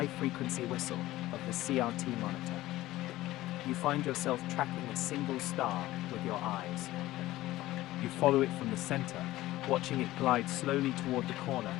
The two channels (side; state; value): right; quieter; 16.5 dB